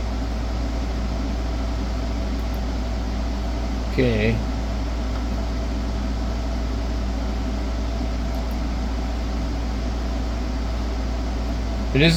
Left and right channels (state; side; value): identical; both; correlation 1.00